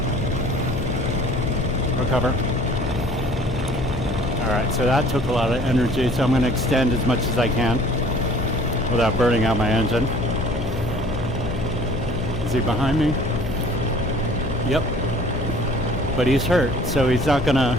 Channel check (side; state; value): left; noise; hum, 6 dB below the sound